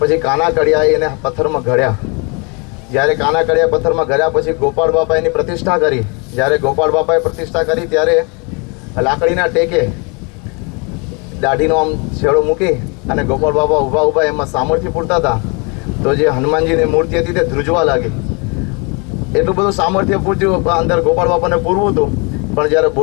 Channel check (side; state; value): right; quieter; 31.7 dB